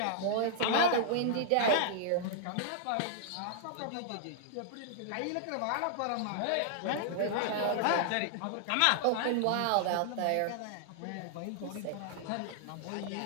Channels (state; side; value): different; both; correlation -0.01